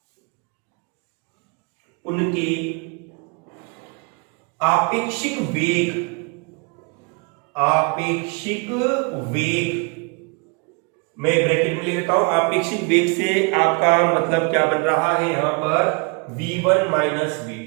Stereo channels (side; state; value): left; quieter; 32.4 dB